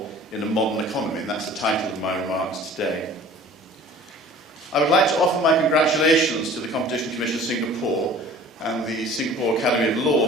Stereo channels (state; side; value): normal; both; correlation 0.46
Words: in a modern economy, and that's the title of my remarks today. I would like to offer my congratulations to the Competition Commission of Singapore and the Singapore Academy of Law